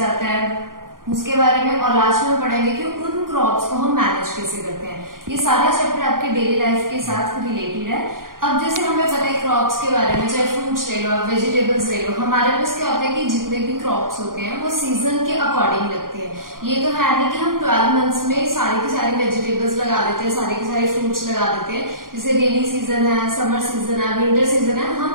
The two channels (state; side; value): late; left; 0.91 ms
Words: है उसके बारे में, और लास्ट में पढ़ेंगे कि उन क्रॉप्स को हम मैनेज कैसे करते हैं। ये सारा चैप्टर आपके डेली लाइफ के साथ रिलेटेड है। अब जैसे हमें पता है क्रॉप्स के बारे में, चाहे फ्रूट्स ले लो, वेजिटेबल्स ले लो, हमारे पास क्या होता है कि जितने भी क्रॉप्स होते हैं वो सीजन के अकॉर्डिंग लगते हैं। ये तो है नहीं कि हम 12 मंथ्स में सारी की सारी वेजिटेबल्स लगा देते हैं, सारे के सारे फ्रूट्स लगा देते हैं। जैसे रेनी सीजन है, समर सीजन है, विंटर सीजन है, हम